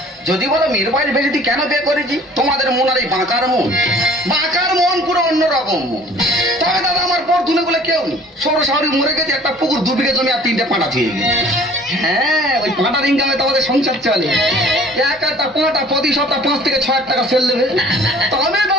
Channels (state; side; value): normal; both; correlation 0.50